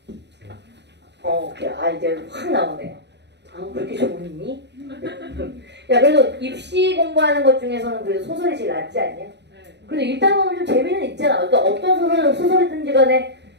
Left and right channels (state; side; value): late; left; 0.50 ms